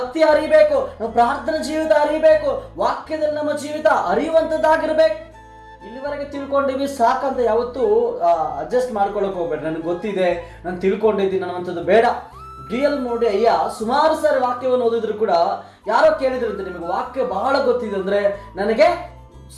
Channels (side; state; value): both; identical; correlation 1.00